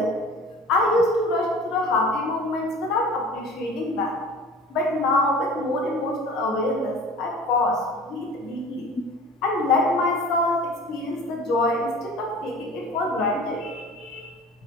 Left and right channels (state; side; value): normal; both; correlation 0.42